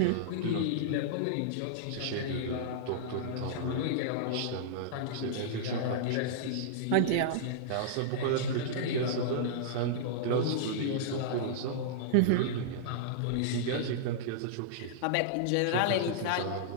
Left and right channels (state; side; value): different; both; correlation -0.02